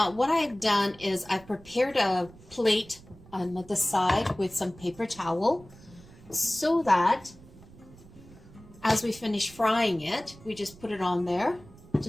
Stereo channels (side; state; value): right; noise; rumble, 22 dB below the sound